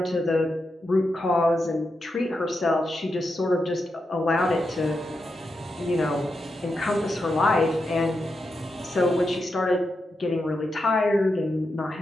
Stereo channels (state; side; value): normal; both; correlation 0.86